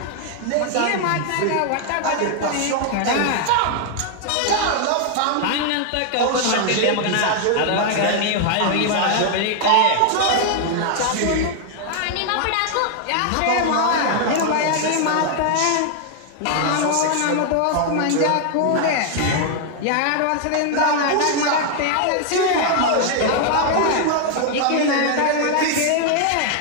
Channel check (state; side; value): different; both; correlation 0.00